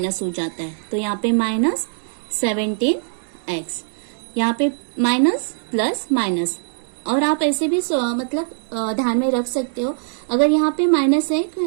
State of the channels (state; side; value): silent; left; digital silence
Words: हो जाता है। तो यहाँ पे माइनस 17x, यहाँ पे माइनस प्लस माइनस। और आप ऐसे भी मतलब ध्यान में रख सकते हो, अगर यहाँ पे माइनस है